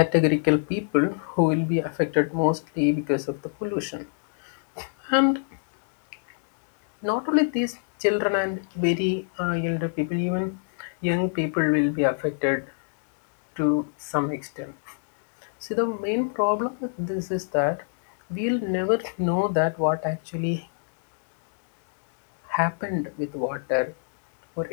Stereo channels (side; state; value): right; silent; digital silence